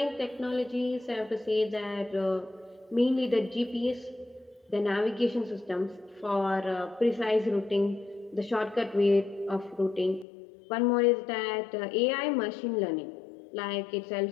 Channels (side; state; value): right; drops out; at 10.2 s